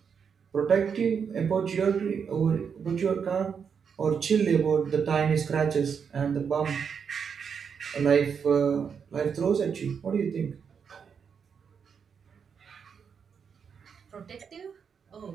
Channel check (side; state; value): left; quieter; 6.7 dB